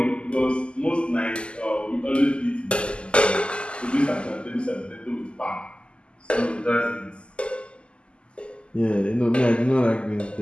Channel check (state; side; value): late; right; 0.052 ms